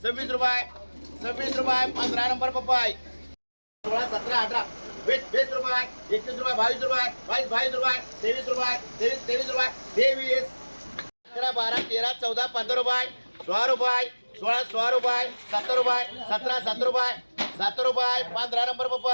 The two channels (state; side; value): inverted; both; correlation -1.00